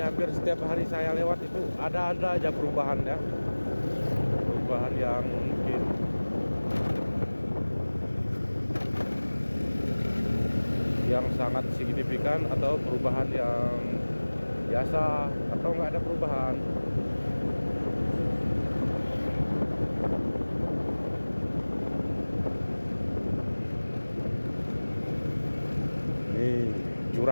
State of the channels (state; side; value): inverted; both; correlation -1.00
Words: hampir setiap hari saya lewat itu ada aja perubahan ya, perubahan yang mungkin yang sangat signifikan atau perubahan yang biasa atau nggak ada perubahan. Nih